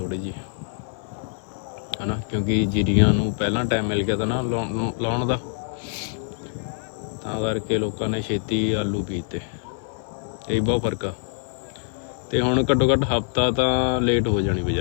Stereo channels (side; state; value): right; silent; 55 dB below the other